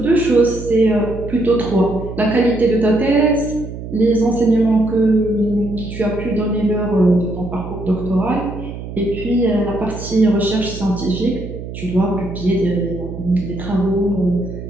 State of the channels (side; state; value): right; noise; hum, 10 dB below the sound